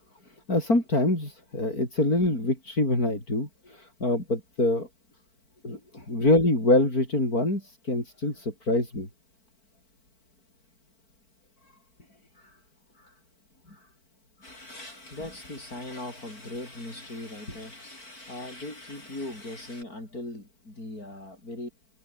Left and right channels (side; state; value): right; late; 4.5 ms